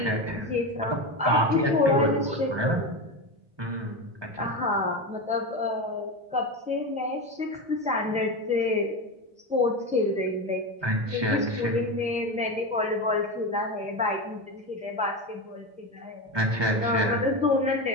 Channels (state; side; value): late; left; 1.2 ms